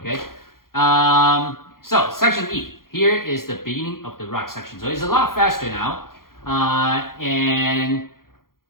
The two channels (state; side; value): late; right; 0.92 ms